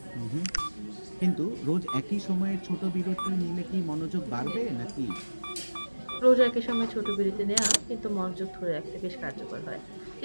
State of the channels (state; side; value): inverted; both; correlation -1.00